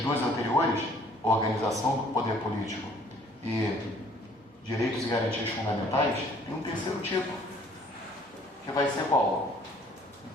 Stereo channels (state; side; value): normal; both; correlation 0.58